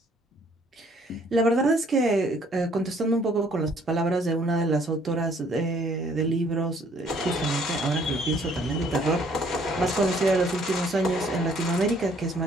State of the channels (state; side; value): normal; both; correlation 0.62